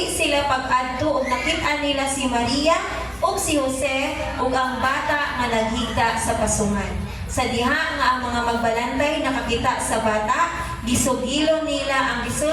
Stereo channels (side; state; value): both; identical; correlation 1.00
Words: sila pag-adto ug nakit-an nila si Maria ug si Jose ug ang bata nga naghigda sa pasungan. Sa diha nga ang mga magbalantay nakakita sa bata, gisugilon nila ang